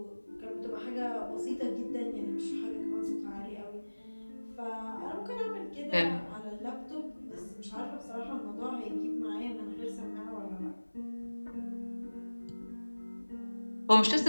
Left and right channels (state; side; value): inverted; both; correlation -1.00